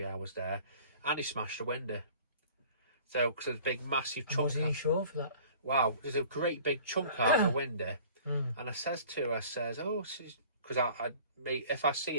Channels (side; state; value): both; inverted; correlation -0.48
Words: hours there, and he smashed a window. So, because there's a big, massive chunk. Was he insured for that? Wow, there's a great big chunk out of the window. And I says to her, because if I see